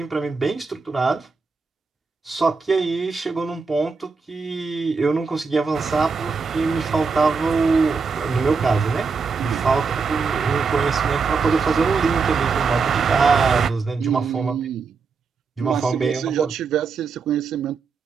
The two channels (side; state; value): left; quieter; 4.9 dB